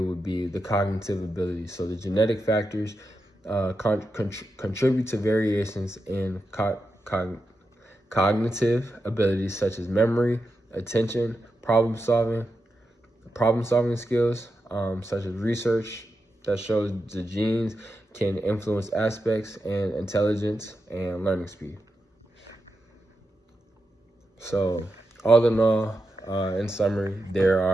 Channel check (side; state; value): both; normal; correlation 0.88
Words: be the cognitive abilities. So the genetic factors contribute to variations in cognitive abilities such as memory, attention, problem solving skills, such as research that shows the genes can influence aspects and intelligence and learning speed. So all in all, in summary, there